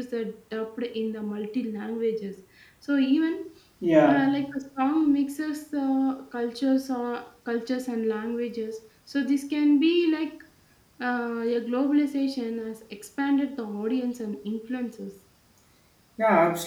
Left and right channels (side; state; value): both; identical; correlation 1.00